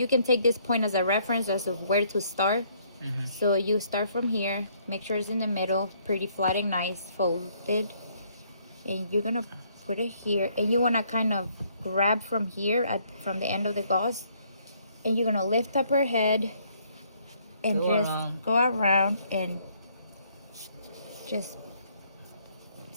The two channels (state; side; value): inverted; both; correlation -0.67